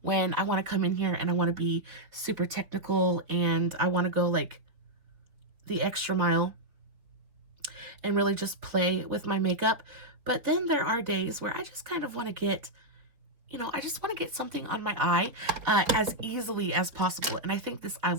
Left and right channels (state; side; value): late; left; 4.4 ms